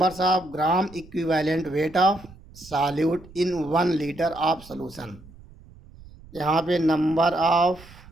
of gram equivalent weight of solute in 1 litre of solution. यहाँ पे number of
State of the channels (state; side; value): noise; right; rumble, 21 dB below the sound